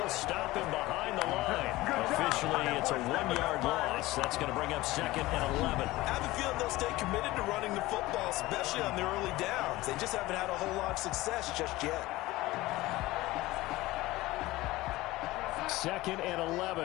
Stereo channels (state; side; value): quieter; right; 18.7 dB